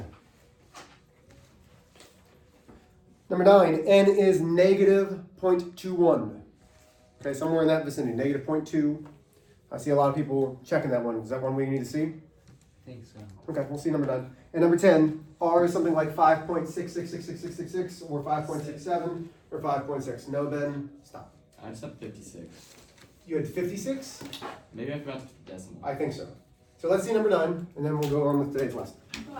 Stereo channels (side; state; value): both; identical; correlation 1.00